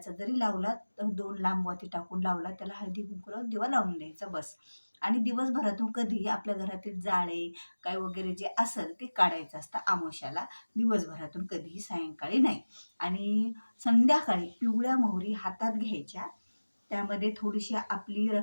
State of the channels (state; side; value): inverted; both; correlation -1.00